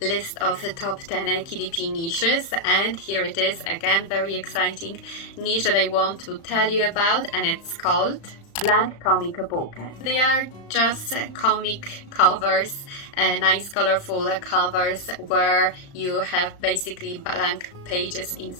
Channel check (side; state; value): right; late; 35 ms